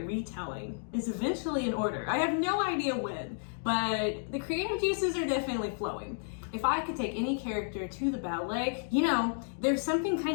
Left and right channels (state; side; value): silent; right; digital silence